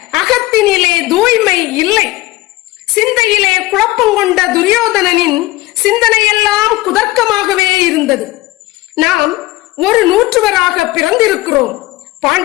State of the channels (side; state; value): right; quieter; 18.5 dB